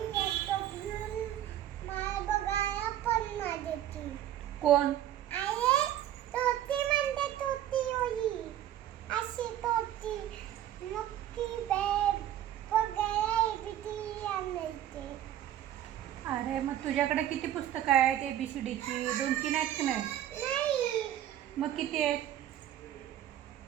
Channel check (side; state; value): left; quieter; 11.9 dB